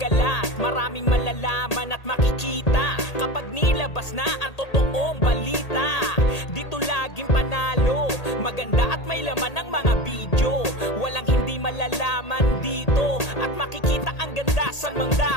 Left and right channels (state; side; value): late; right; 1.8 ms